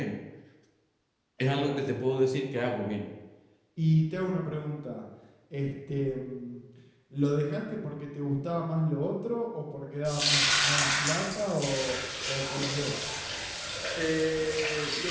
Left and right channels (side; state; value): both; identical; correlation 1.00